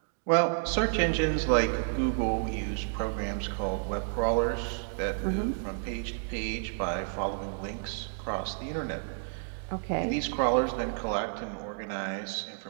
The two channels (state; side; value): silent; left; digital silence